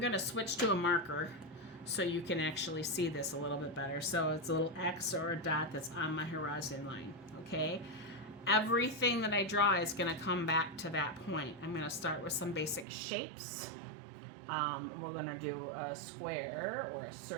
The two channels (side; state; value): left; drops out; at 12.9 s